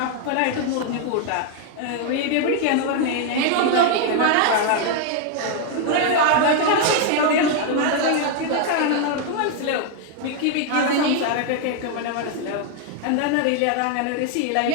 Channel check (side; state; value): both; different; correlation 0.00